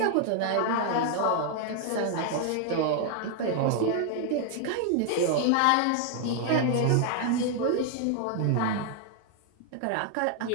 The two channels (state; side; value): different; both; correlation 0.00